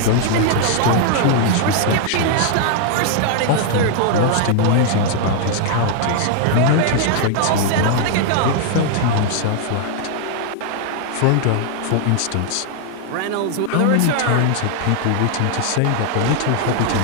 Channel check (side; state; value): both; different; correlation 0.00